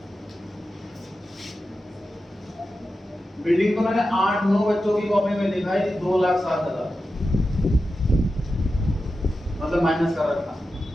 बिल्डिंग को मैंने 8-9 बच्चों की कॉपी में लिखा है 2,07,000। मतलब माइनस कर रखा।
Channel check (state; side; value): normal; both; correlation 0.91